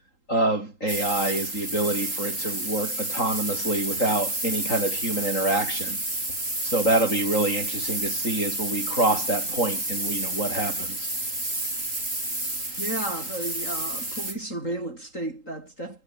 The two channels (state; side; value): late; right; 3.8 ms